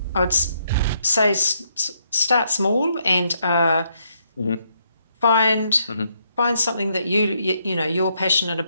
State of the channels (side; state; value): both; inverted; correlation -0.75